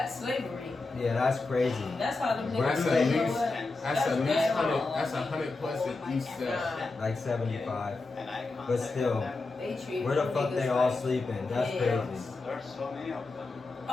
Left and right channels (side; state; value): right; quieter; 3.5 dB